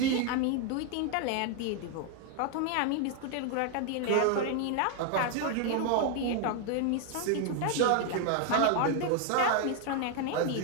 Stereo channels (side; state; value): both; different; correlation 0.01